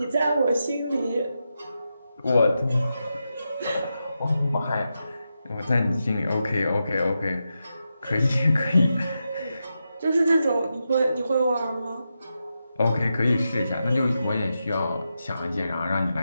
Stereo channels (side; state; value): both; inverted; correlation -0.88